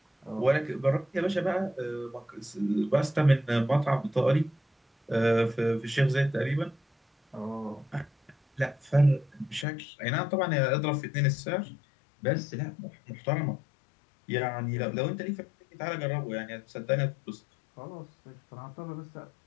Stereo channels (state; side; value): drops out; right; at 9.7 s